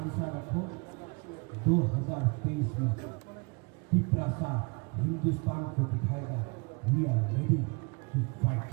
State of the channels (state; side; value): quieter; left; 31.3 dB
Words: रखो। 2023 में पिपरासा हिंदुस्तान को दिखाएगा we are ready to fight.